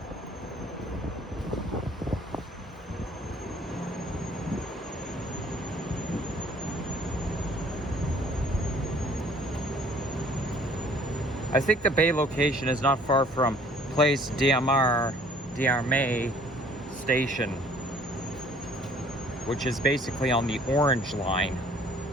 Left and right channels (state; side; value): normal; both; correlation 0.56